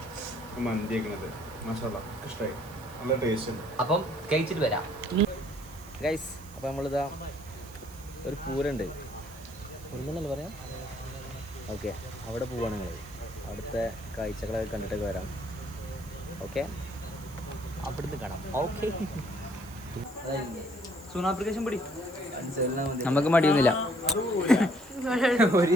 മന്തി കഴിക്കണത്. മാഷാല്ലാ ഇഷ്ടമായി, നല്ല ടേസ്റ്റ് ഉണ്ട്. അപ്പം കഴിച്ചിട്ട് വരാം ഗൈസ്. അപ്പം നമ്മളിതാ ഒരു പൂരണ്ട് ഒന്നല്ലേ പറയാം. ഓക്കെ, അവിടെ പോവാണ് നിങ്ങൾ. അവിടുത്തെ കാഴ്ചകളൊക്കെ കണ്ടിട്ടൊക്കെ വരാം. ഓക്കെ, അവിടുന്ന് കാണാം. ഓക്കെ, സൂൺ ആപ്ലിക്കേഷൻ പിടി. നമുക്ക് മടിയൊന്നുമില്ല,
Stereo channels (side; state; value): right; noise; hiss, 21 dB below the sound